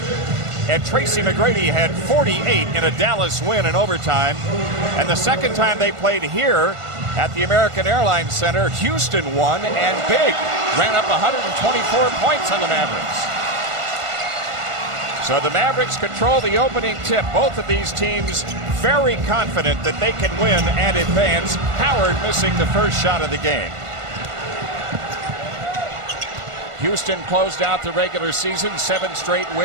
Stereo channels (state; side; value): late; left; 1.5 ms